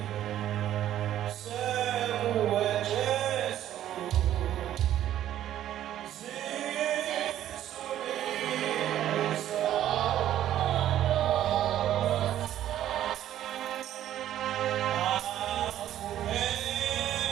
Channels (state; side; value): quieter; left; 12.0 dB